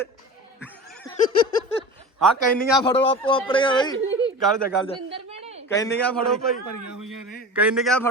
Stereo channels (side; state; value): both; normal; correlation 0.33